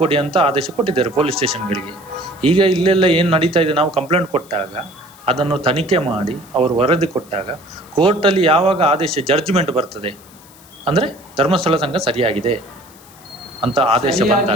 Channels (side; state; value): left; noise; hiss, 24 dB below the sound